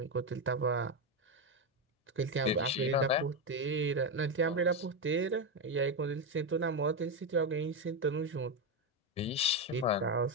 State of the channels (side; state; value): both; normal; correlation 0.10